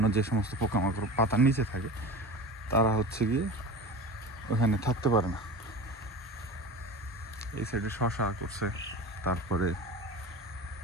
যে সমস্ত পোকামাকড় পাতার নিচে থাকে তারা হচ্ছে গিয়ে ওখানে থাকতে পারে না। এই সাইডে শশা করছে, তারপরে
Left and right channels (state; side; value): normal; both; correlation 0.32